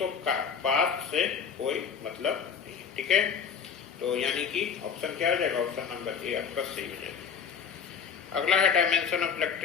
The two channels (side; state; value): right; quieter; 6.8 dB